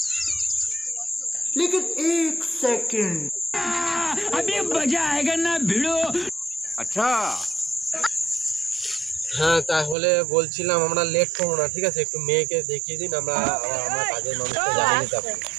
लेकिन एक सेकंड अभी मजा आएगा ना भिड़ो আচ্ছা হ্যাঁ তাহলে বলছিলাম আমরা লেট করব না ঠিক আছে একটু মেয়েকে দেখিয়ে দিন আমরা কাজের মানুষকে জানিয়ে দিতে পারি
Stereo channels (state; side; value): drops out; left; at 10.0 s